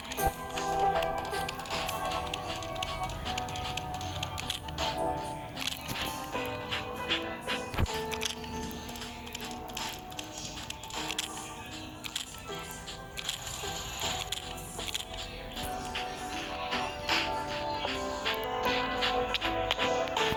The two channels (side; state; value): both; identical; correlation 1.00